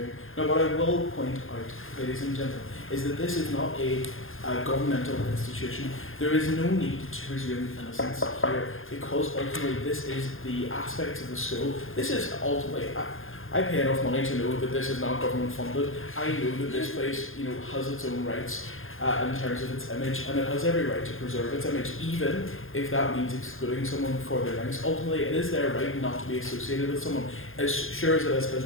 Now, what I will point out, ladies and gentlemen, is that this is not a governmental institution. There is no need to presume innocence here, because ultimately this is the aspects of the school. This is ultimately, I pay enough money to know that this is not government funded. I know that this place, has its own rights in terms of its image, and it has every right to preserve its image, even if that means excluding someone for their links. Ultimately, it is their right not to be associated with someone, as sure as it is his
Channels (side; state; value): right; late; 0.60 ms